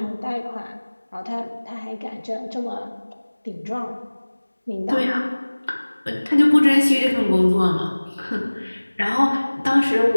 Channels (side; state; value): both; inverted; correlation -1.00